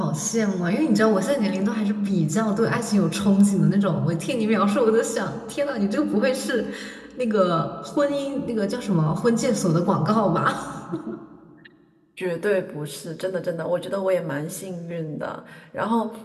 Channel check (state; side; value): identical; both; correlation 1.00